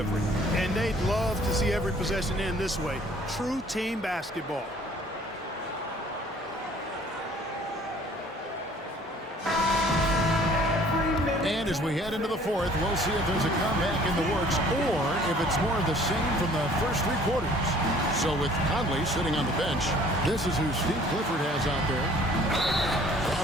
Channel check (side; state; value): both; normal; correlation 0.54